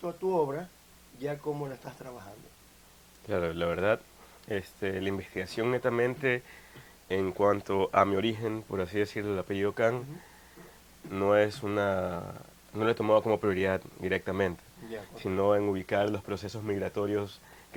a tu obra, ya cómo la estás trabajando? Claro, la verdad, la investigación netamente en cuanto a mi origen, por así decirlo, el apellido Can, no lo he tomado como prioridad directamente, Ya, sino en ubicar los procesos migratorios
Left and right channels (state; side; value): identical; both; correlation 1.00